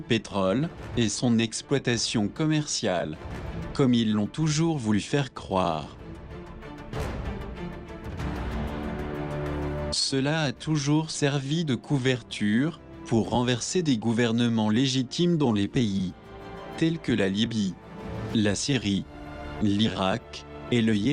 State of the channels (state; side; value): identical; both; correlation 1.00